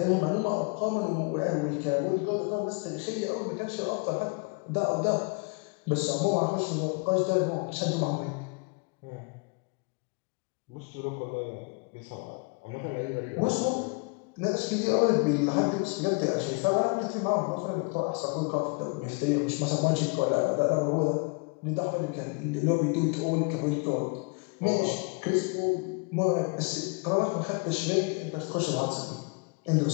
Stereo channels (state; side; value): quieter; right; 31.9 dB